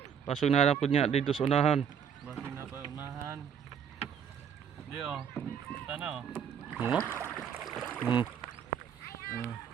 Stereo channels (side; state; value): left; quieter; 7.9 dB